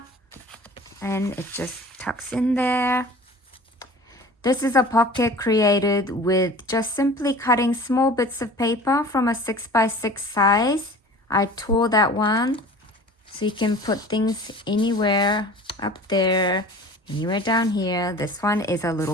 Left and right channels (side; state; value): both; normal; correlation 0.42